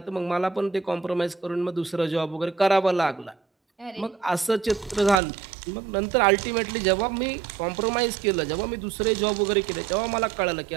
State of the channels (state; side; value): drops out; left; at 5.2 s